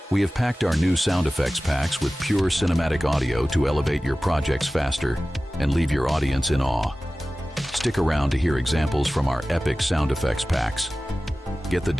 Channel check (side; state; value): both; normal; correlation 0.96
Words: We have packed our new sound effects packs with pure cinematic audio to elevate your projects faster and leave your audience in awe. Stick around to hear examples from our epic sound effects packs. Get the